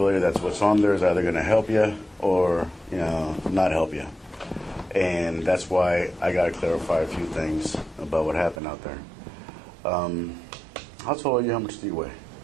that's what's on there is either going to help you or, not help you. And that's why I got to clarify a few things about what happened out there. How tall are you? How much do you weigh?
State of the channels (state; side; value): drops out; left; at 8.6 s